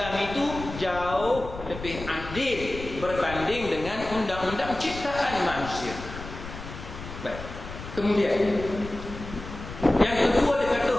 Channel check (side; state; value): left; noise; rumble, 11 dB below the sound